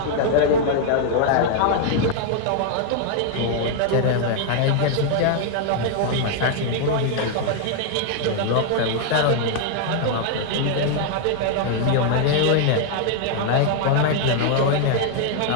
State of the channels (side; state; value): both; different; correlation 0.00